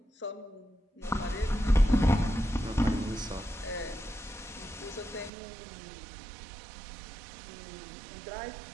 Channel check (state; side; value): drops out; left; at 5.3 s